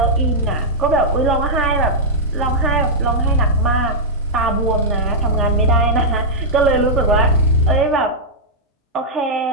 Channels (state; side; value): normal; both; correlation -0.08